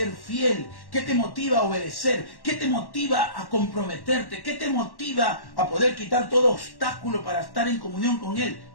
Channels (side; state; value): right; late; 1.1 ms